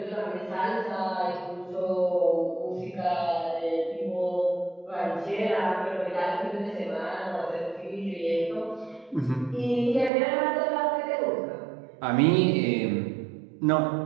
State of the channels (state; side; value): drops out; left; at 10.1 s